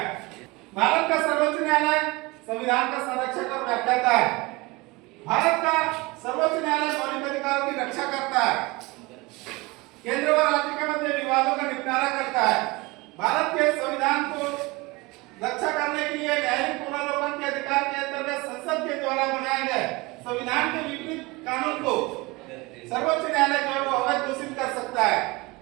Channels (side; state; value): left; quieter; 23.8 dB